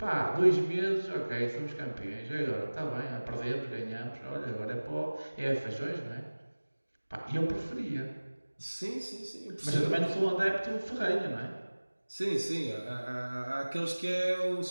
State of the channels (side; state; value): both; inverted; correlation -1.00